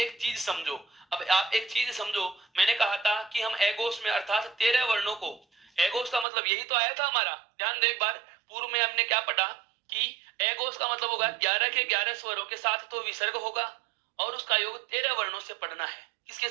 चीज समझो, मैंने कहा था कि हम एगोस में अर्थात 13 वर्णों को, एगोस का मतलब यही तो आया था हमारा, ध्यान दो एक बार, पूर्व में हमने क्या पढ़ा कि एगोस का मतलब होगा 11 के 11 स्वरों के साथ तो विसर्ग होगा और उसका योग 13 वर्णों से पढ़ना है। किसके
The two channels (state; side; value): drops out; left; at 6.2 s